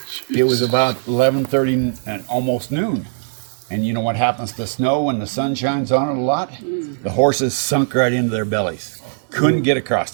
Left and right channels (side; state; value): left; silent; digital silence